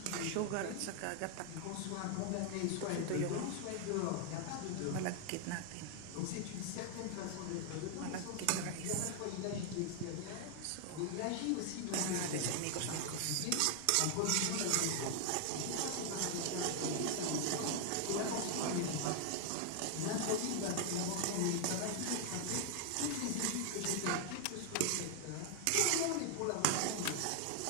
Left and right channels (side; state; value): both; different; correlation 0.00